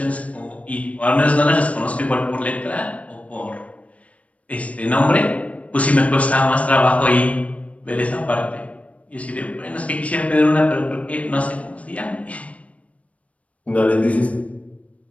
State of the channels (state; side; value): late; right; 0.066 ms